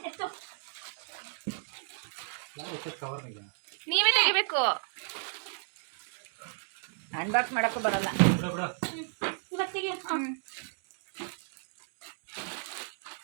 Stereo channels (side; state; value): left; silent; 56 dB below the other